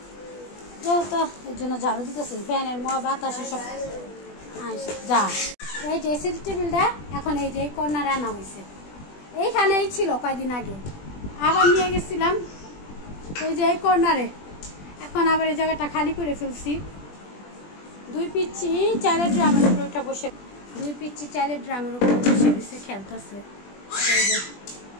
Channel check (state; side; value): late; right; 20 ms